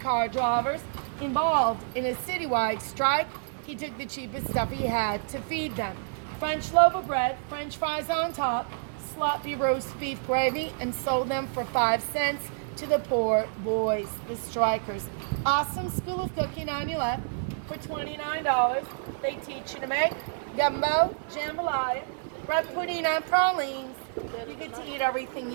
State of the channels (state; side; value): silent; left; 59 dB below the other